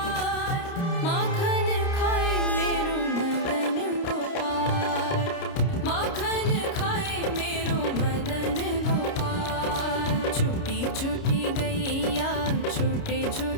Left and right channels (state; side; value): late; right; 29 ms